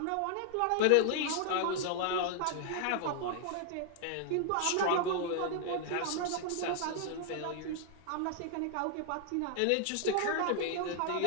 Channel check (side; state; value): both; different; correlation 0.00